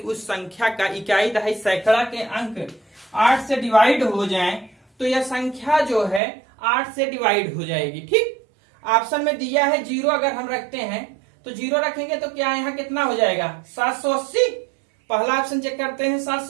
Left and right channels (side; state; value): left; drops out; at 6.2 s